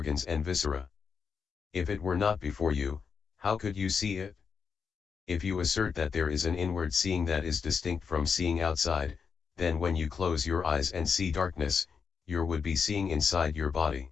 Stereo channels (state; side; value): quieter; right; 6.0 dB